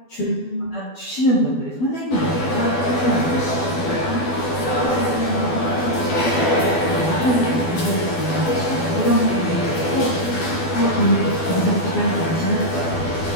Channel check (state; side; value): late; right; 12 ms